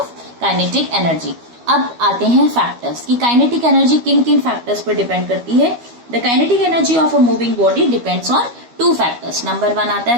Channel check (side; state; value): left; late; 12 ms